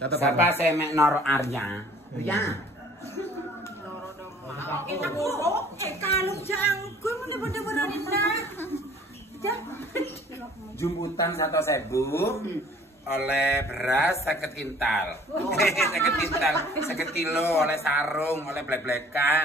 Sapa semek Noro Arya? Ria. Kita buruk kalung jangkul mun bener-bener enak. Jumputan 1.000 oleh beras 50 kintal. 50 kintal, 50 kilo oleh sarung, oleh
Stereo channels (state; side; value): normal; both; correlation 0.53